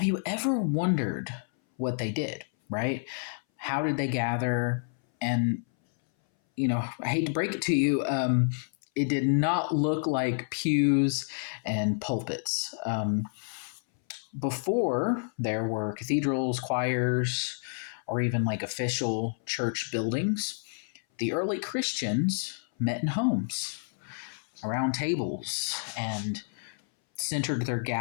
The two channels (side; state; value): right; silent; 58 dB below the other